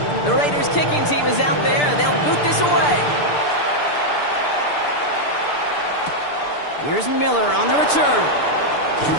The Raiders kicking team is out there, and they'll boot this away. Here's Miller on the return.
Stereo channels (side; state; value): right; late; 6.8 ms